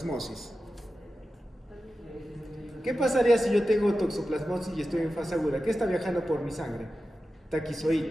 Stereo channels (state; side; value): normal; both; correlation 0.93